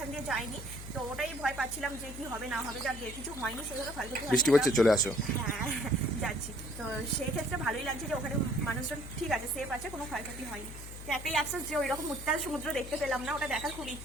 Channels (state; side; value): noise; left; hum, 11 dB below the sound